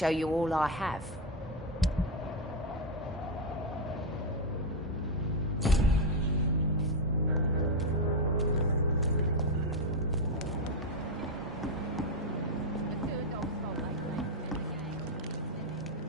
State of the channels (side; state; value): both; normal; correlation 0.04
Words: you all I have.